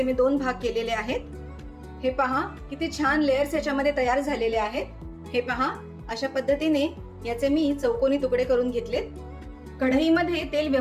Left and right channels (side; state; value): both; identical; correlation 1.00